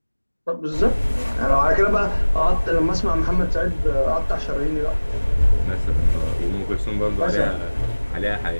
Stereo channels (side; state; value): both; inverted; correlation -1.00